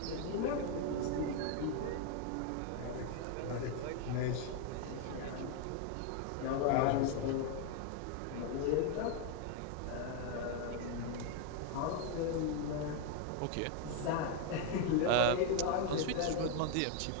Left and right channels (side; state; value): both; different; correlation 0.01